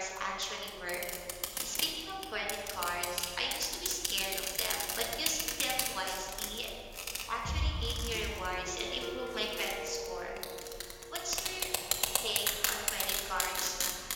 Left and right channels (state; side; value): identical; both; correlation 1.00